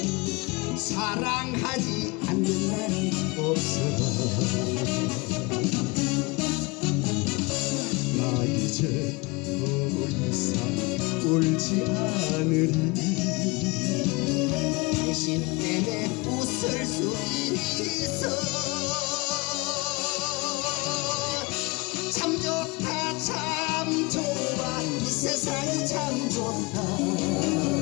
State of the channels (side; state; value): right; quieter; 25.7 dB